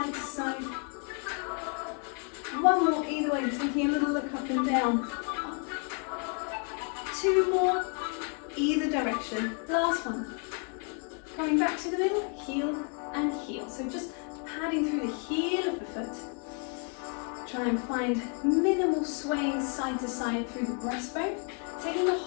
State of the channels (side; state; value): right; quieter; 38.3 dB